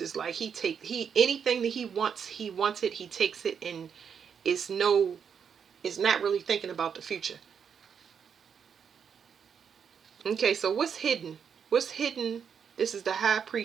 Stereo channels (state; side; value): quieter; left; 7.2 dB